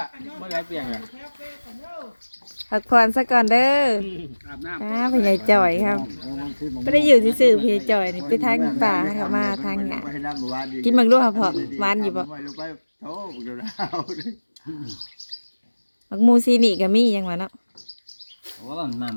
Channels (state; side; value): inverted; both; correlation -1.00